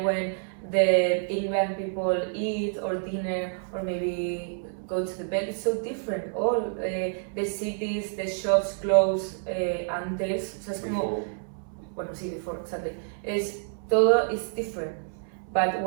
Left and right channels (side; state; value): left; silent; 59 dB below the other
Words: when the England people eat or dinner or maybe go to the bed, it's so different. All the cities, the shops close antes. O sea, es como, bueno, sí, before, exactly. Todo is different. But